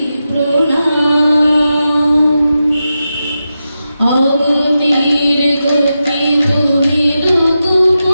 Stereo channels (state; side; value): inverted; both; correlation -0.90